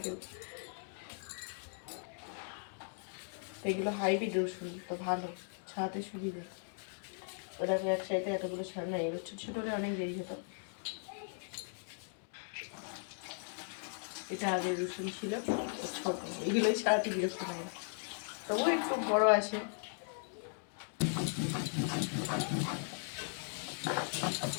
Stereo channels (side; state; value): right; silent; 53 dB below the other